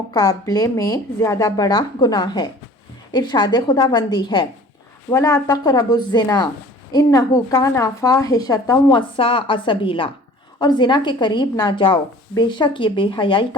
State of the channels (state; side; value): normal; both; correlation 0.47